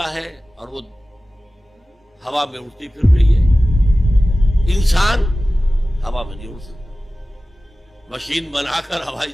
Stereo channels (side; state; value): both; normal; correlation 0.96